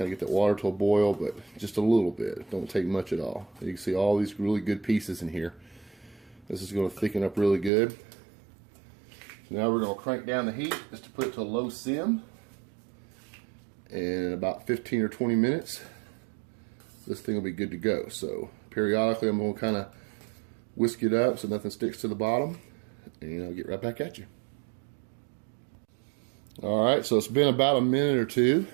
of get that water to a boil, but just a little bit. Don't take much at all. You can see all these really good pieces in here. This is going to thicken up really good. So now we're going to crank down the heat just to put it to a low sim. And in about 15 or 20 minutes, this thing will be good to go. So periodically I'm going to kind of whisk it up so nothing sticks to the bottom, and I'll get right back at you. Alright, so it's been about a minute or two,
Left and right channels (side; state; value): left; drops out; at 7.7 s